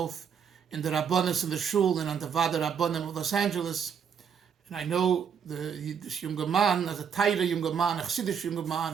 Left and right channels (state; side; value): quieter; left; 7.3 dB